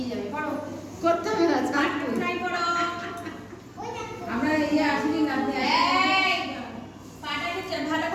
যাবে, করো। করতে হবে না ছাড় তুই। বাটারফ্লাই করো। আমরা ইয়ে আসলি না এই, পাটাকে ভালো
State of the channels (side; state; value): both; identical; correlation 1.00